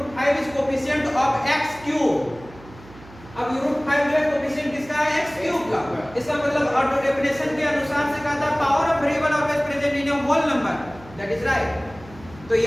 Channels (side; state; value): right; noise; hum, 20 dB below the sound